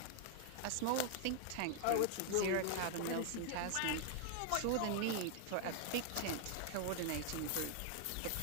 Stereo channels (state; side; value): different; both; correlation 0.00